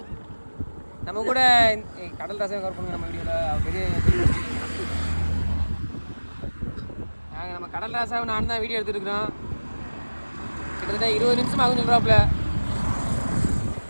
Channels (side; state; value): both; inverted; correlation -1.00